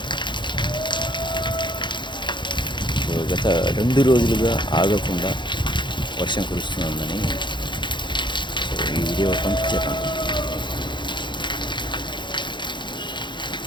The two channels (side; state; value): right; late; 0.23 ms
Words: సో గత 2 రోజులుగా ఆగకుండా వర్షం కురుస్తుందని సో ఈ వీడియో పంపించాను,